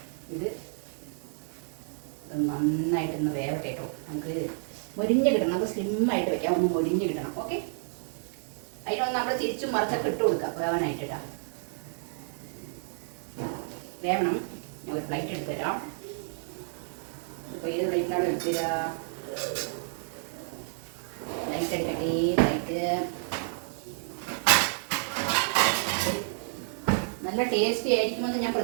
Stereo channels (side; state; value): left; silent; digital silence